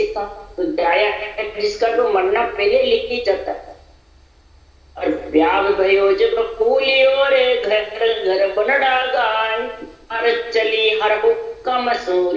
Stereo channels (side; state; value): both; identical; correlation 1.00